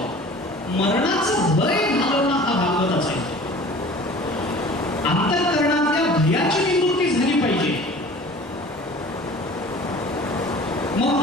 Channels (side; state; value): both; normal; correlation 0.44